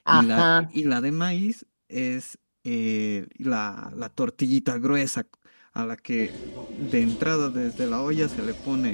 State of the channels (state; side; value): inverted; both; correlation -1.00